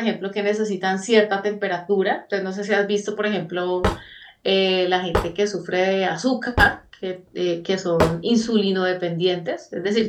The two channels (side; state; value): both; identical; correlation 1.00